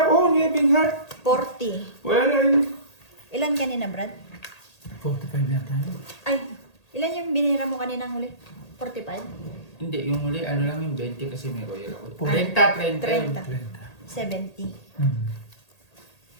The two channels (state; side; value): late; right; 1.8 ms